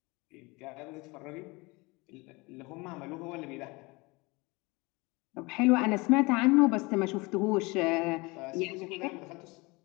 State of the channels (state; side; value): quieter; right; 25.1 dB